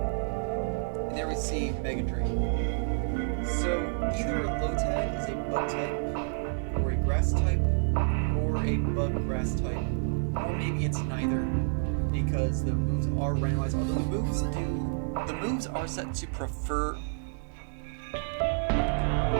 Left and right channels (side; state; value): left; silent; 58 dB below the other